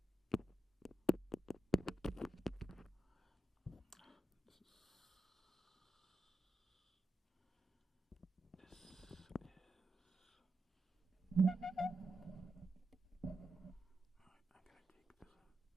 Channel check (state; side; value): normal; both; correlation 0.87